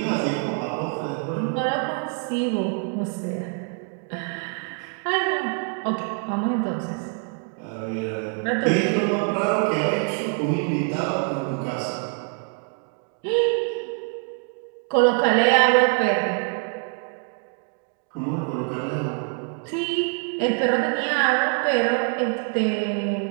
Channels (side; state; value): left; quieter; 40.0 dB